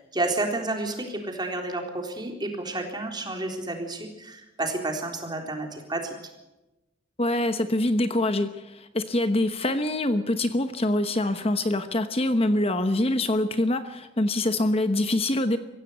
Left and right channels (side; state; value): both; normal; correlation 0.63